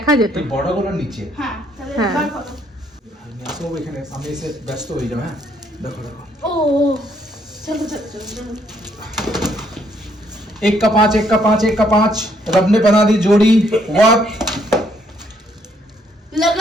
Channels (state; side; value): normal; both; correlation 0.70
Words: যেত। এই বড়গুলো নিচে। হ্যাঁ তাহলে হ্যাঁ। বার করো। সব এখানে আমি এসে ব্যস্ত হয়ে যাবে। হ্যাঁ দেখো দেখো, ও চলো চলো চলো চলো। एक का पाँच रब ने बना दी जोड़ी, वक्त